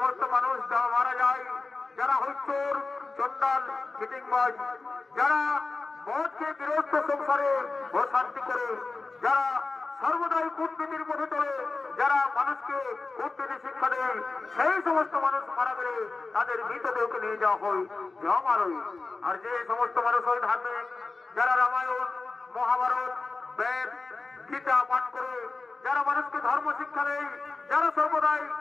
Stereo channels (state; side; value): quieter; right; 3.8 dB